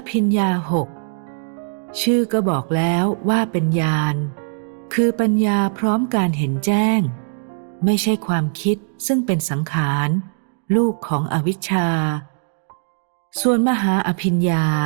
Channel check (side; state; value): left; silent; digital silence